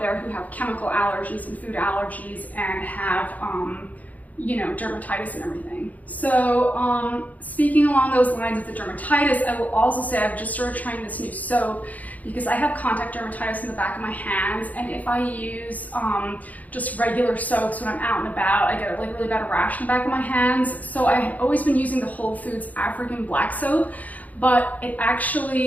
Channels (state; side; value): late; right; 0.077 ms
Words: who have chemical allergies and food allergies and have you know, dermatitis and everything. So speaking along those lines of the dermatitis, I will also say I've just started trying this new soap because I have contact dermatitis in the back of my hands, and if I use just regular soaps when I'm out and about, I get like really bad rash in the back of my hands. So I had always been using the Whole Foods African black soap, but it